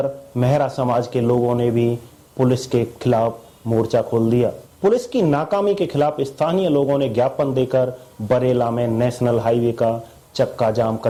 मेहरा समाज के लोगों ने भी पुलिस के खिलाफ मोर्चा खोल दिया। पुलिस की नाकामी के खिलाफ स्थानीय लोगों ने ज्ञापन देकर बरेला में नेशनल हाईवे का चक्का जाम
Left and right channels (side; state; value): both; identical; correlation 1.00